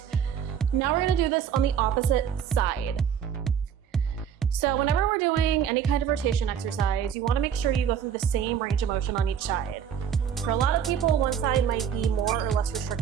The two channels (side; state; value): left; quieter; 8.3 dB